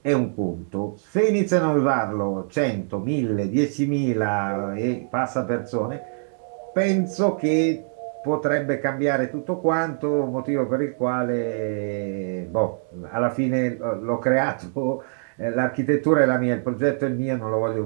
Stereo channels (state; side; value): silent; left; digital silence